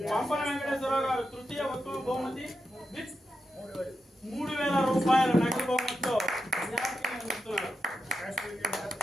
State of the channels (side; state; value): both; normal; correlation 0.87